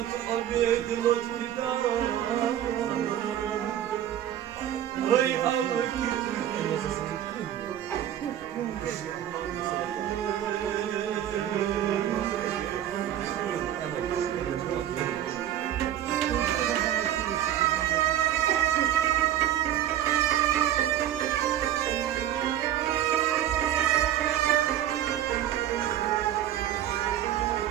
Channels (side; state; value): left; quieter; 11.5 dB